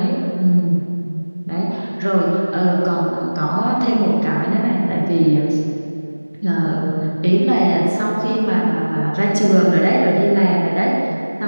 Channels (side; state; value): both; inverted; correlation -1.00